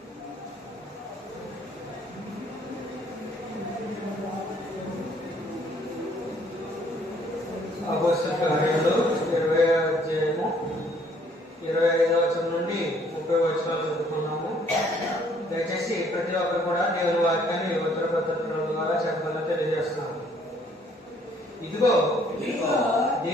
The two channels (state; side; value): normal; both; correlation 0.62